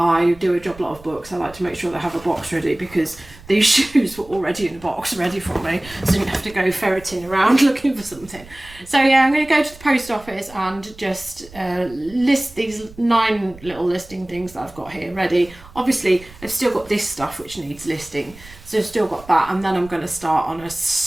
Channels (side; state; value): right; noise; rumble, 21 dB below the sound